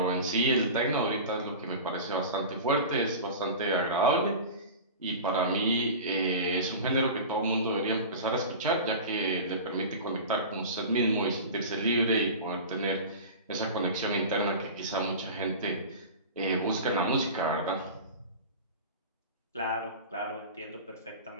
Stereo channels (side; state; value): both; inverted; correlation -0.32